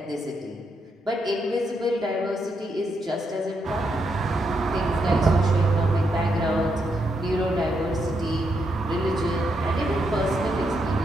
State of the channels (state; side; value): normal; both; correlation 0.80